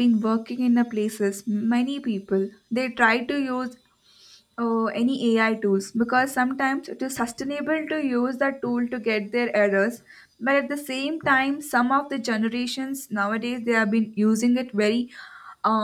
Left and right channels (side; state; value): both; identical; correlation 1.00